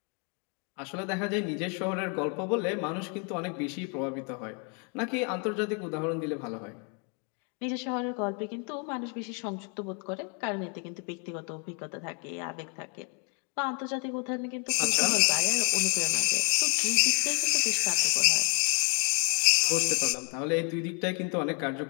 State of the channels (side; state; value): right; quieter; 37.9 dB